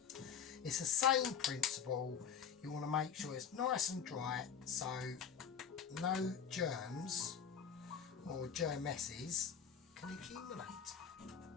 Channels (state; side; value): quieter; right; 7.4 dB